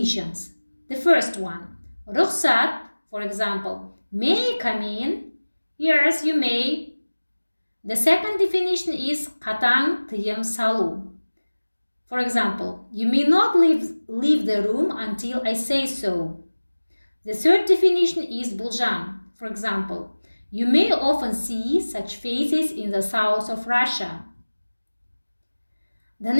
The first one, рұқсат, for example, may I come in? Yes, you may. The second definition is қатаң тыйым салу. For example, you may not leave the room until I say so. The third definition is болжам. For example, you may often see such faces in the south of Russia. The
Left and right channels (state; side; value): inverted; both; correlation -1.00